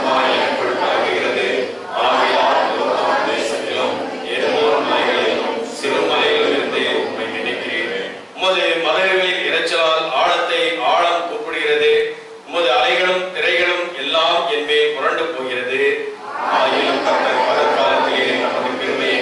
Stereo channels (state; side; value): identical; both; correlation 1.00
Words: எனக்குள் கலங்குகிறது. ஆகையால் தேசத்திலும் எல்லோரும் மலைகளிலும் சிறு மலைகளிலிருந்து உம்மை நினைக்கிறேன். உமது மலைகளின் இரைச்சலால் ஆழத்தை ஆழம் கூப்பிடுகிறது. உமது அலைகளும் திரைகளும் எல்லாம் என் மேல் புரண்டு போகிறது. ஆயிலும் கர்த்தர் பகற்காலத்திலே நமது பெருமையை